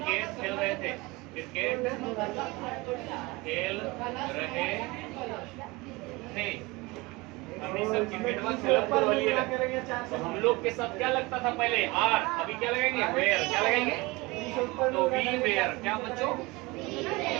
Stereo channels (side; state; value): left; quieter; 23.4 dB